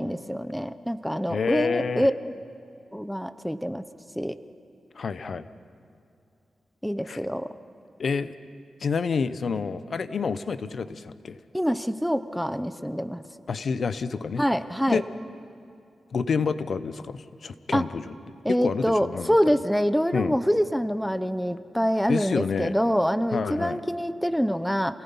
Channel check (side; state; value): both; normal; correlation 0.95